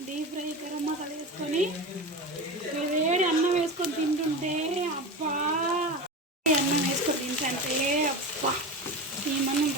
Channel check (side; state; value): both; normal; correlation 0.26